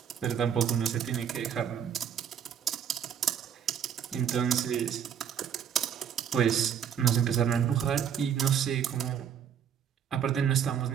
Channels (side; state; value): left; quieter; 8.4 dB